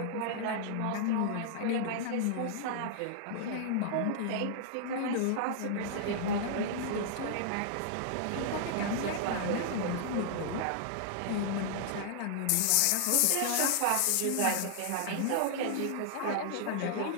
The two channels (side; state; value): both; different; correlation -0.01